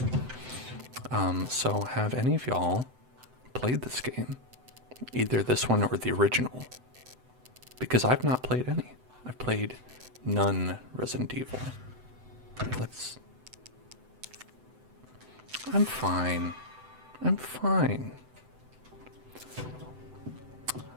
So have any of y'all played this game? Either this one or the original? Because I've not played any. I've played none Resident Evil. Let's... I'm fine. I'm fine.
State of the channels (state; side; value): late; left; 7.9 ms